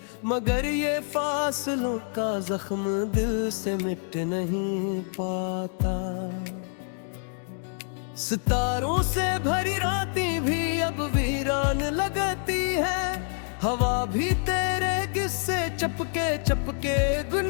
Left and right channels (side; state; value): right; silent; 60 dB below the other